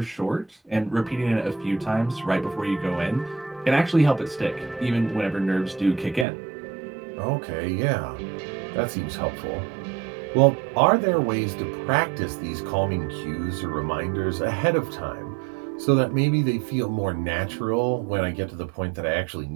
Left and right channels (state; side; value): drops out; left; at 6.2 s